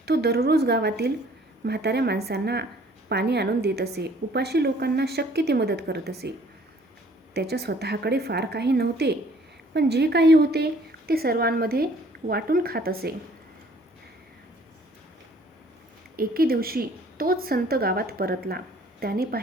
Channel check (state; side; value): normal; both; correlation 0.57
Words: तो दररोज गावातील म्हाताऱ्या माणसांना पाणी आणून देत असे. उपाशी लोकांना शक्य ती मदत करत असे. त्याच्या स्वतःकडे फार काही नव्हते, पण जे काही होते ते सर्वांमध्ये वाटून खात असे. एके दिवशी तोच संत गावात परतला. त्याने